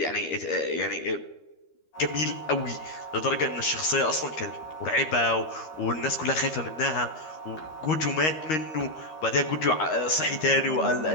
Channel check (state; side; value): late; right; 13 ms